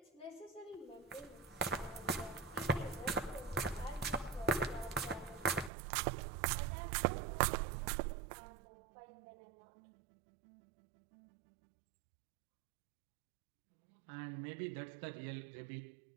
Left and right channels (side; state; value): left; drops out; at 5.7 s